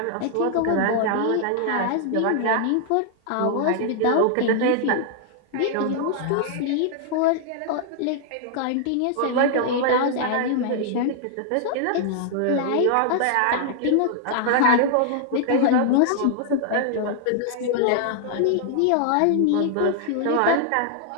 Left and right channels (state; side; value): different; both; correlation -0.01